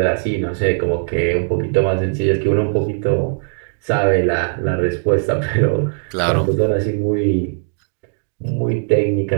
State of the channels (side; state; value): left; silent; digital silence